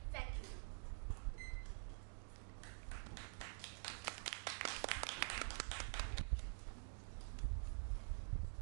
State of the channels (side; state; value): left; silent; digital silence